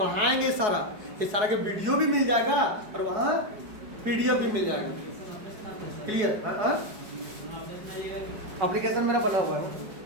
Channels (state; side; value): late; left; 4.8 ms